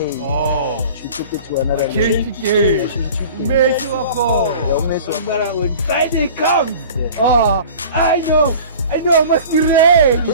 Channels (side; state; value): both; inverted; correlation -0.42